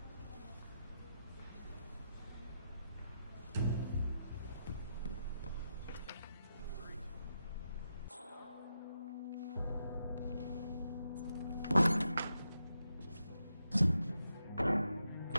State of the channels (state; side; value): inverted; both; correlation -0.85